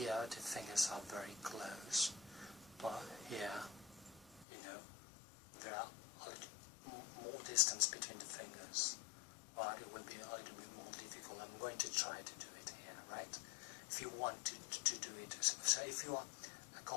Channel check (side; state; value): right; drops out; at 4.5 s